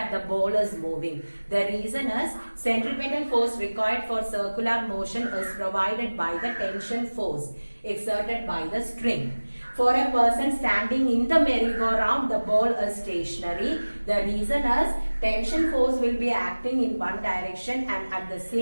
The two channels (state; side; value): inverted; both; correlation -1.00